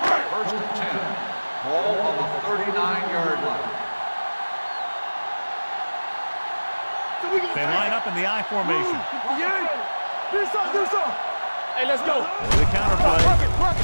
First and 10. Ball on the 39-yard line. They line up in the I formation. Do something. Hey, let's go. For the counterplay.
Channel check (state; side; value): inverted; both; correlation -1.00